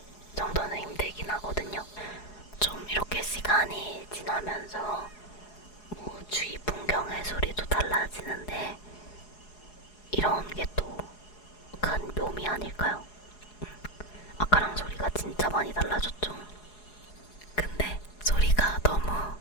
정도는 힘들긴 하거든요. 좀 이렇게 시간이 지나면서 뭐 주위 풍경의 소리도 달라지는데 이런 게 또 큰 묘미 아닐까요? 아까랑 소리가 진짜 많이 달라졌죠. 근데 소리가 너무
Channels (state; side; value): late; right; 4.8 ms